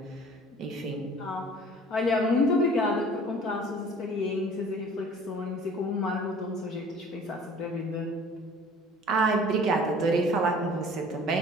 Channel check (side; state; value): both; normal; correlation 0.49